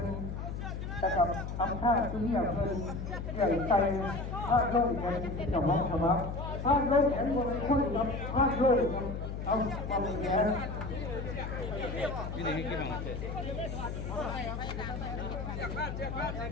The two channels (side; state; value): left; noise; hum, 5 dB below the sound